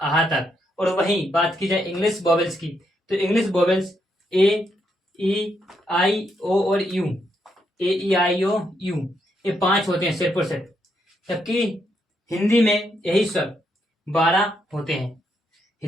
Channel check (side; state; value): both; normal; correlation 0.78